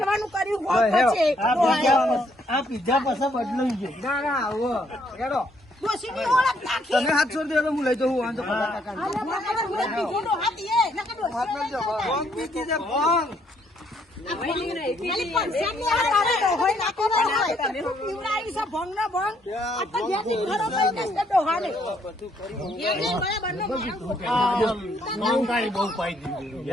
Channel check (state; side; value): normal; both; correlation 0.70